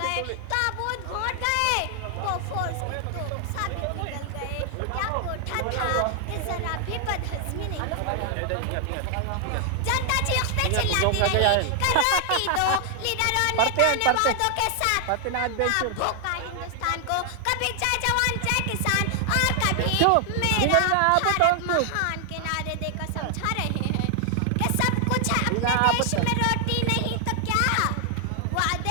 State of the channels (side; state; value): both; different; correlation 0.00